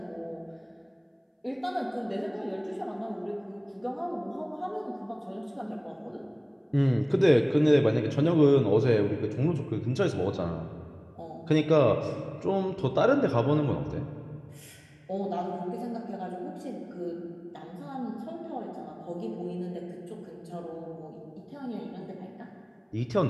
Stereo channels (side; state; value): both; identical; correlation 1.00